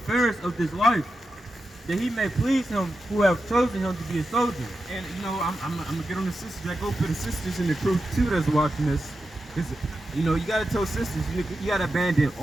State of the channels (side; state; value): both; normal; correlation 0.90